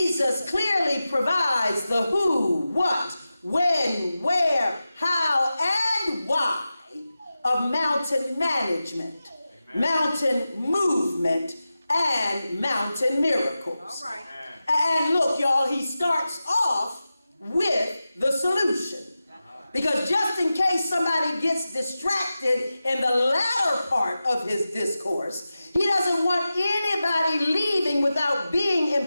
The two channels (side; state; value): both; inverted; correlation -0.93